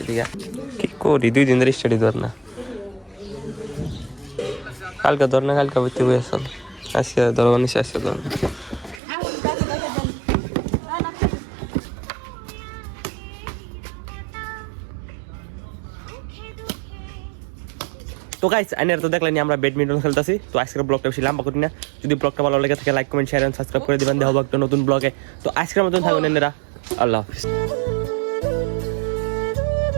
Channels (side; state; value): left; drops out; at 9.0 s